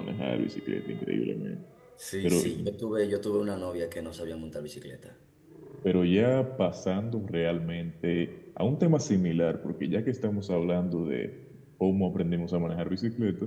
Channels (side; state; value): both; identical; correlation 1.00